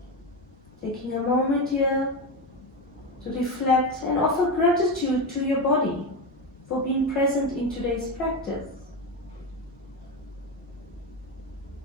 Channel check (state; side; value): normal; both; correlation 0.16